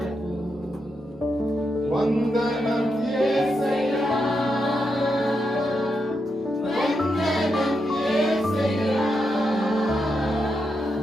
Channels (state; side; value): normal; both; correlation 0.84